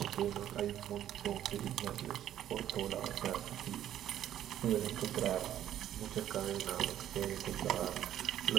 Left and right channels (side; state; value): left; quieter; 11.4 dB